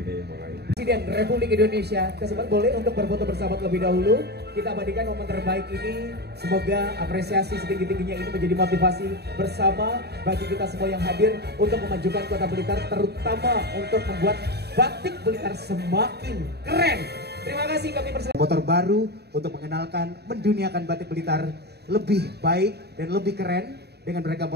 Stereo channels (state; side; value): late; left; 0.48 ms